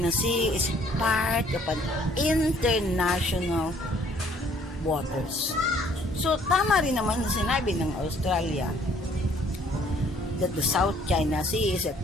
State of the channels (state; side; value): normal; both; correlation 0.61